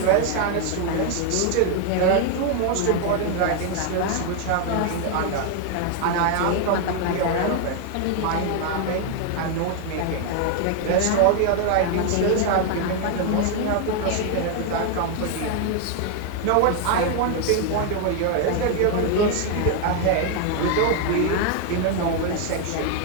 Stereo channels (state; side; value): different; both; correlation 0.01